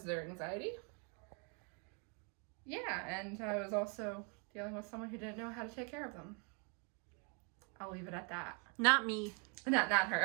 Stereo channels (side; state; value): left; quieter; 34.8 dB